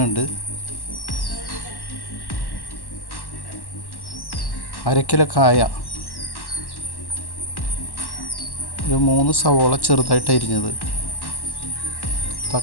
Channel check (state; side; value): late; right; 1.1 ms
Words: ഉണ്ട്, 1/2 kilo കായ, ഒരു 3 സവോള ചെറുതായിട്ട് അരിഞ്ഞത്,